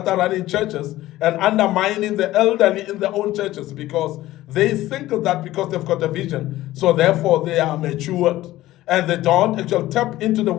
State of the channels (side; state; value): right; quieter; 15.8 dB